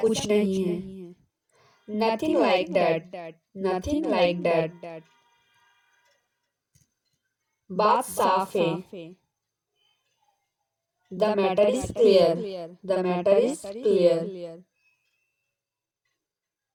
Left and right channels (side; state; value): both; identical; correlation 1.00